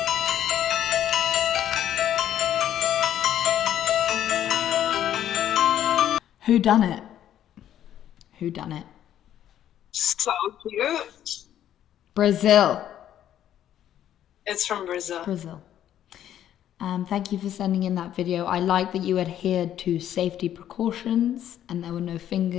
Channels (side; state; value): right; quieter; 11.0 dB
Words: Who done it? Who done it? So cute. Brazil. It's from Brazil. Brazil. Thank you for sending in that video. I like that you adhered to safety precautions and there were no